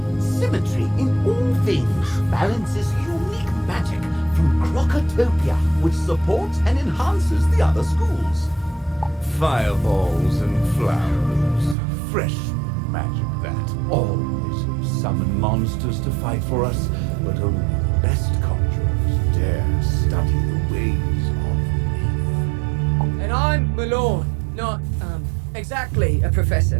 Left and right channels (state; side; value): drops out; left; at 11.8 s